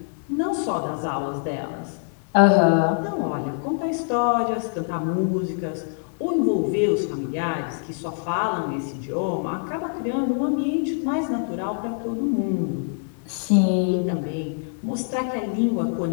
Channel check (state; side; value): silent; right; digital silence